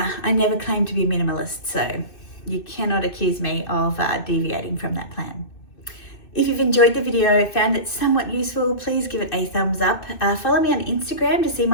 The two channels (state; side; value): late; right; 2.6 ms